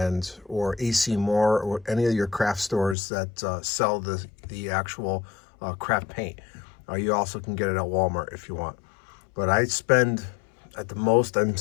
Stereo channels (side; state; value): right; drops out; at 3.0 s